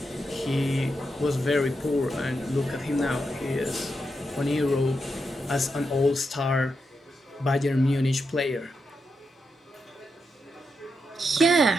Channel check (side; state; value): both; normal; correlation 0.85